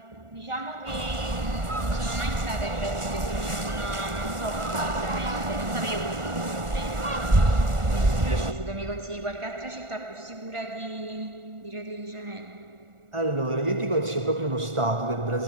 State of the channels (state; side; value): late; left; 1.4 ms